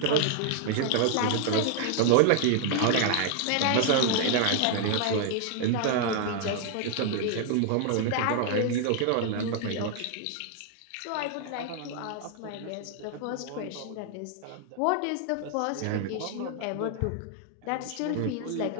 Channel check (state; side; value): different; both; correlation 0.00